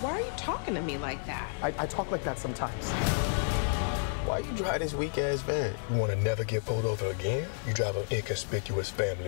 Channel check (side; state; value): right; silent; 57 dB below the other